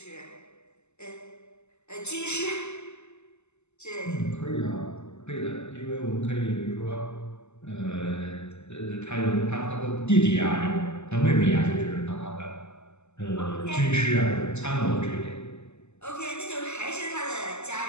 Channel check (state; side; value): late; right; 0.82 ms